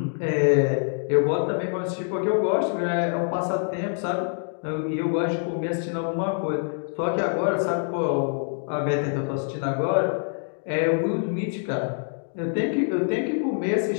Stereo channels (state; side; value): silent; right; 61 dB below the other